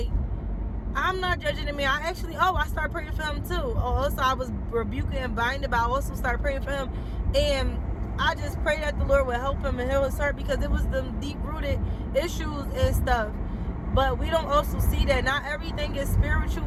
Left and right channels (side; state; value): both; identical; correlation 1.00